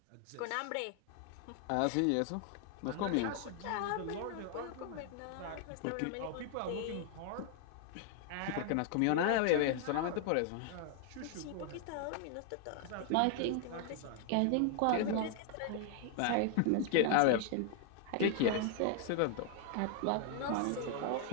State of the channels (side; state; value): both; different; correlation 0.00